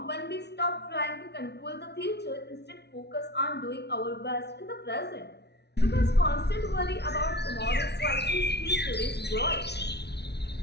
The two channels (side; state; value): right; late; 0.49 ms